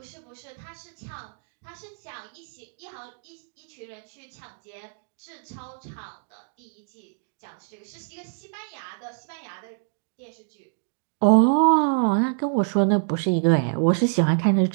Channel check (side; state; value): left; silent; digital silence